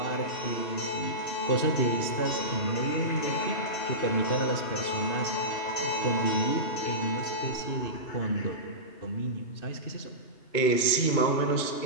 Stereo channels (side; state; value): right; late; 2.2 ms